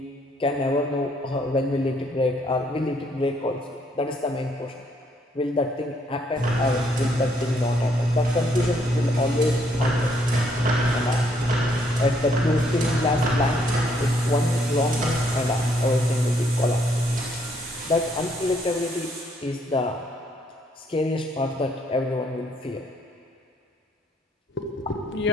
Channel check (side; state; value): both; normal; correlation 0.69